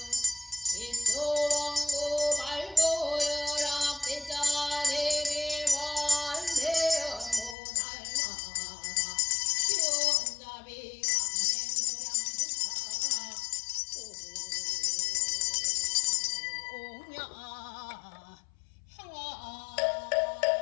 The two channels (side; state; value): right; drops out; at 7.6 s